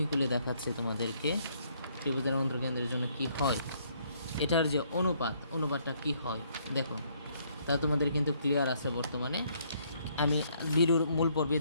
খুলে দেখাচ্ছি তোমাদেরকে, ত্রিভুজের অন্তর্কেন্দ্রের জন্য কি হয়, এটার যে অনুপাতটা কি হয় দেখো, তা তোমাদের কিন্তু ক্লিয়ার আছে বর্তমানে। আমি ভিডিওর মূল পর্বে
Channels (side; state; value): both; inverted; correlation -0.68